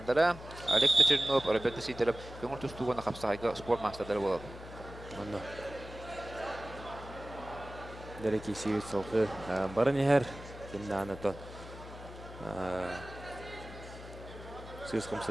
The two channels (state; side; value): noise; left; hum, 14 dB below the sound